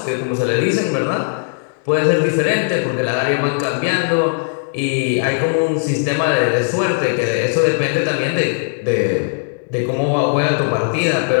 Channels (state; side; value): silent; right; digital silence